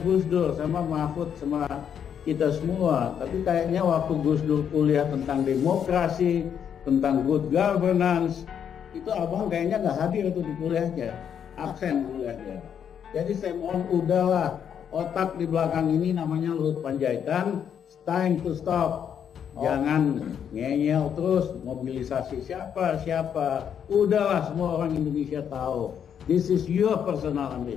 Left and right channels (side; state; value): right; quieter; 8.3 dB